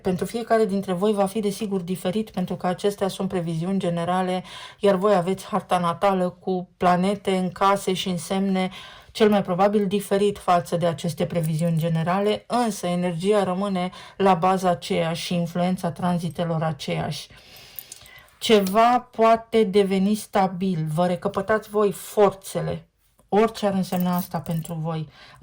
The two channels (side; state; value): both; identical; correlation 1.00